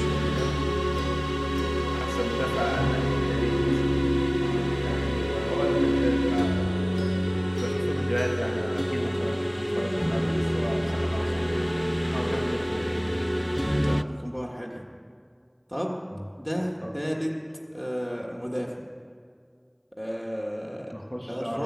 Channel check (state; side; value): identical; both; correlation 1.00